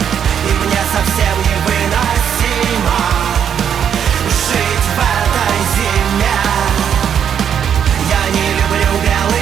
и мне совсем невыносимо жить в этой зиме. Я не люблю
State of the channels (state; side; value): quieter; left; 8.4 dB